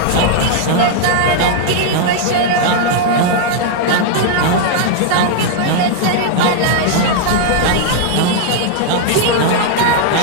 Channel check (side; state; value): both; different; correlation 0.00